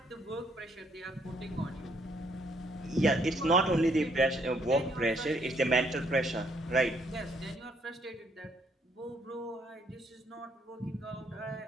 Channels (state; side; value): normal; both; correlation 0.69